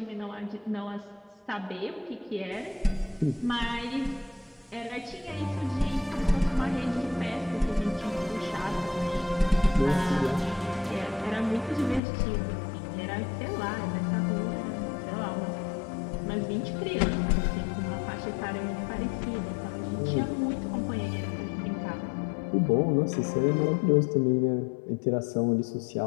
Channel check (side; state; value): right; drops out; at 12.0 s